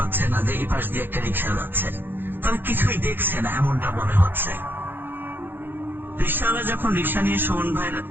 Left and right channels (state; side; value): late; left; 0.098 ms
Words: না যে এই পাশ দিয়ে একটা রিক্সা যাচ্ছে, তারা কিছুই দেখছে না, এমনটা মনে হচ্ছে। রিক্সাওয়ালা যখন রিক্সা নিয়ে সুমন ভাইয়ের